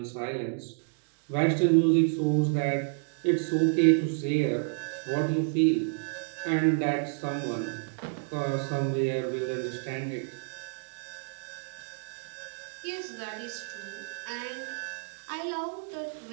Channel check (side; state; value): left; silent; digital silence